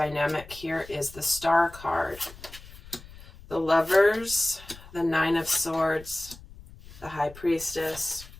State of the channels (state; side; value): noise; left; rumble, 19 dB below the sound